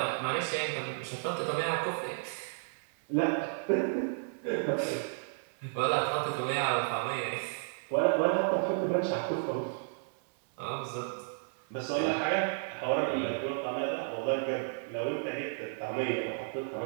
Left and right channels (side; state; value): left; silent; 56 dB below the other